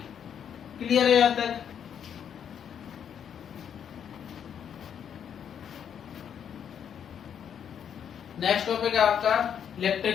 क्लियर है यहाँ तक? नेक्स्ट टॉपिक है आपका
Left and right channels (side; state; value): right; quieter; 8.4 dB